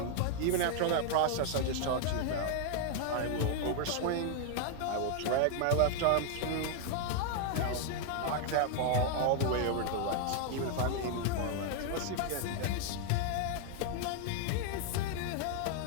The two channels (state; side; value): different; both; correlation 0.00